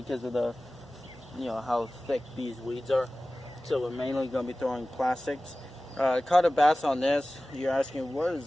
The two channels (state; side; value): normal; both; correlation 0.97